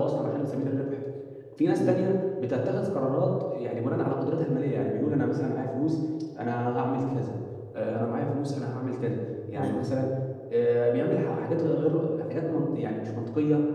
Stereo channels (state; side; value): identical; both; correlation 1.00